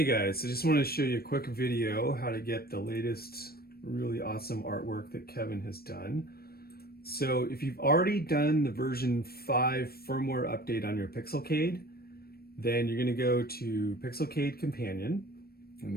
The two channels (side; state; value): right; late; 0.44 ms